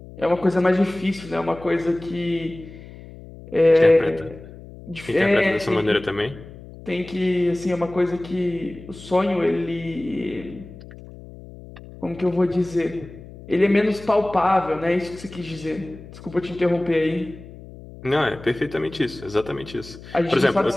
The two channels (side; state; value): left; noise; hum, 17 dB below the sound